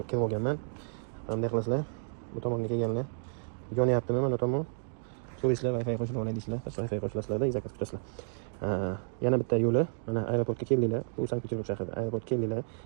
olganman. Bunday qilasizlar. Bu tomonga kelganlar. Yonyaptimi mana tomon? So'raysizlar Wi-Fi qo'shib olay deysizlar. Wi-Fi qo'shilasizlar, zakaz tutasizlar. Yana bitta yo'li, mana aeroportga keldinglar. Bu Sankt-Peterburg shahrida. Aeroportga keldinglar,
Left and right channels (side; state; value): left; silent; digital silence